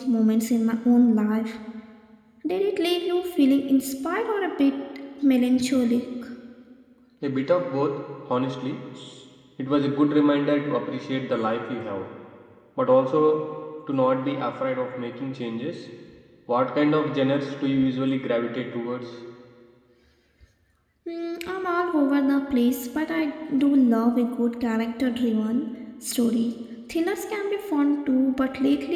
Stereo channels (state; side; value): identical; both; correlation 1.00